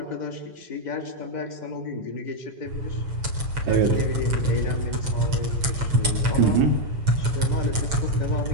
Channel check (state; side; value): late; left; 7.0 ms